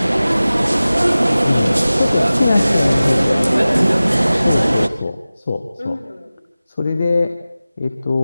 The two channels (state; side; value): inverted; both; correlation -0.97